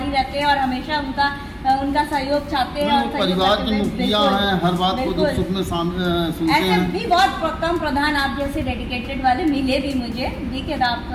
रहते हैं और हमेशा उनका सहयोग चाहते हैं। और परिवार के मुखिया हैं, हर बात को दुख सुख में सुनते ऐसे हैं। भी बहुत कम प्रधान आप जैसे डेडिकेटेड वाले मिले भी मुझे। देखिए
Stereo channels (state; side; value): identical; both; correlation 1.00